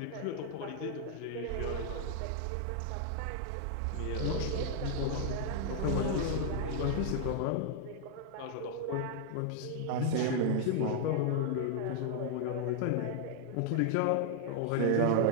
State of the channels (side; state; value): both; different; correlation -0.01